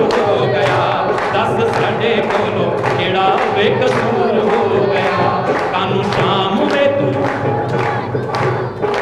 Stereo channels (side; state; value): both; identical; correlation 1.00